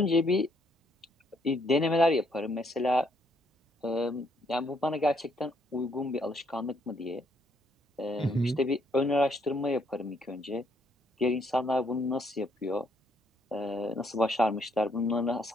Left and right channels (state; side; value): normal; both; correlation 0.70